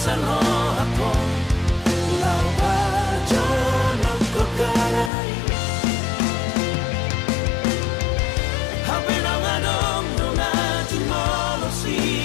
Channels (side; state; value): right; drops out; at 5.1 s